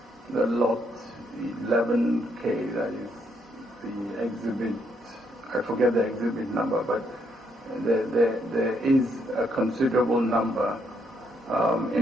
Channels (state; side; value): normal; both; correlation 0.74